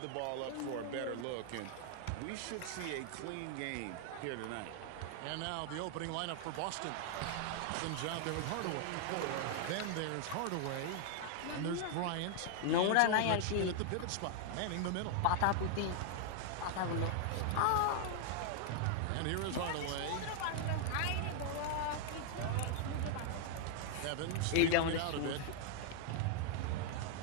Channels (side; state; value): both; different; correlation 0.00